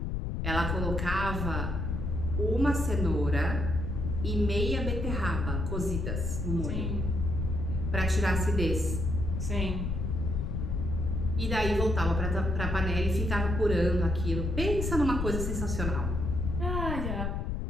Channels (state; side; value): noise; left; rumble, 1 dB below the sound